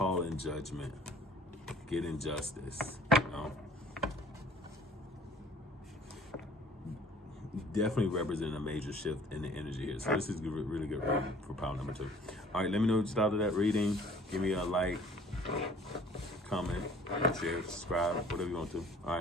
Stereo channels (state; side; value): normal; both; correlation 0.53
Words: in judgment. Get injustice, you know. Definitely represent a major shift in the energy here. So this is really good reading for pile number 2. All right, let me know what you thought of that reading. Give me a like, comment, share, subscribe, whatever you want to. All